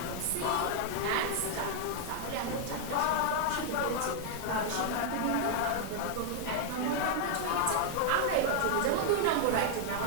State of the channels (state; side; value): different; both; correlation 0.00